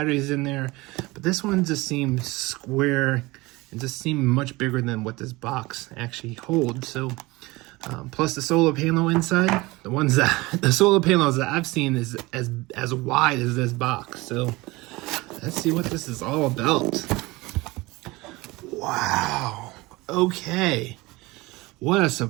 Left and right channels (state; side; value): quieter; left; 21.9 dB